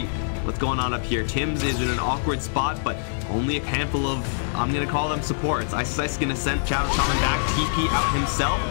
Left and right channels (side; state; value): right; silent; 59 dB below the other